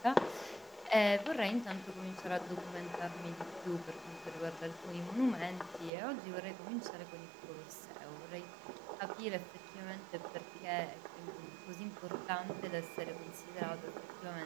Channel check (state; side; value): drops out; left; at 5.9 s